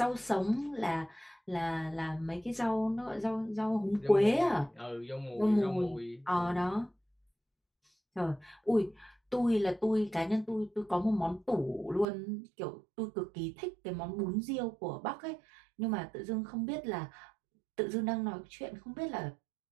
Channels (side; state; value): left; drops out; at 12.1 s